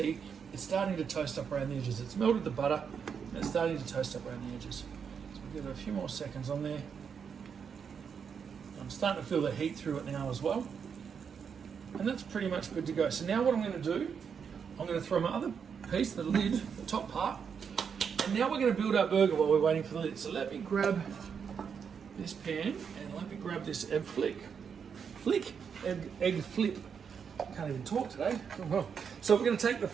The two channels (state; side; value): quieter; left; 6.8 dB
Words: it's starting to toast up around the edges. It's melted the butter, and it's starting to toast up around the edges. So we'll give it a few more seconds on there. I'm starting to feel the heat through it now as well. And that's pretty much good to go. So now what I'm going to do, I'm going to throw my other piece, the lid, the top part, and now we're going to build our burger while we're waiting for the lid. So let me grab this pan and let me grab this egg flip. Can't even talk today. So we're going to take the